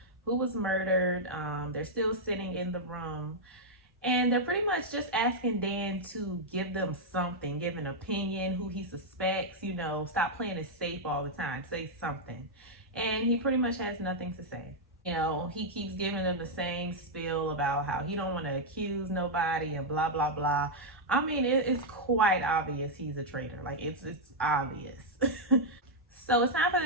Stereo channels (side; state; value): both; normal; correlation -0.03